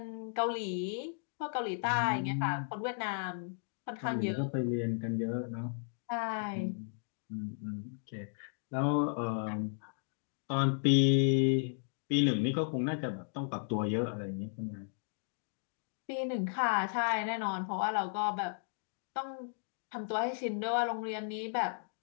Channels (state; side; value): silent; right; digital silence